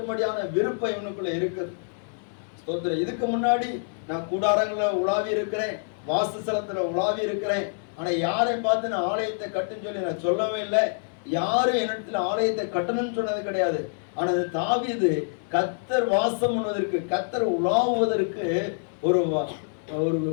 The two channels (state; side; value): silent; right; digital silence